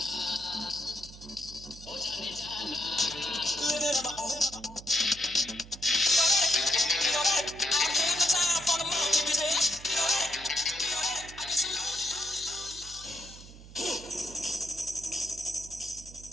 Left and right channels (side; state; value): right; noise; hum, 17 dB below the sound